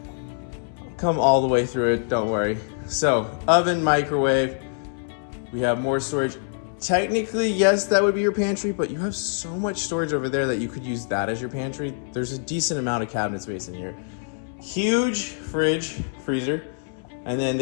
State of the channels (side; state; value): right; silent; 62 dB below the other